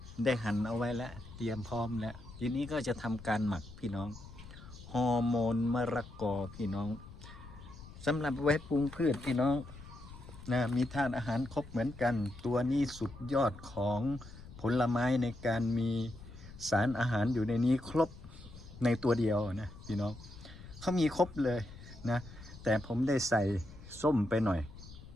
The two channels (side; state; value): left; noise; rumble, 16 dB below the sound